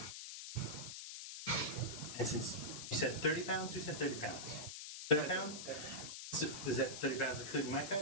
And since you said 30 pounds, who said 30 pounds? 30 pounds? So is that 30 pounds including my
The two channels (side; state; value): left; noise; hiss, 8 dB below the sound